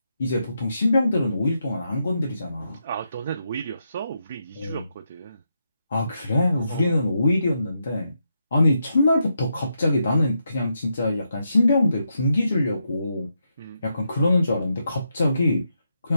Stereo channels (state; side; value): inverted; both; correlation -0.83